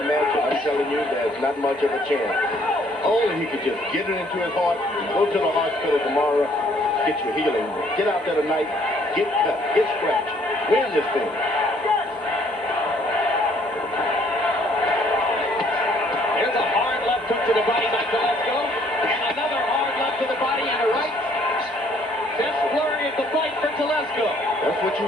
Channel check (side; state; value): both; normal; correlation 0.63